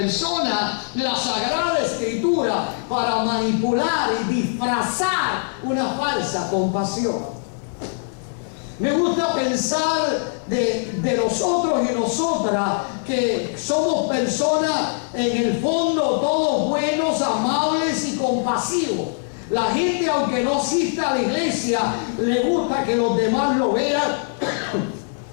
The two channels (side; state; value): right; silent; 64 dB below the other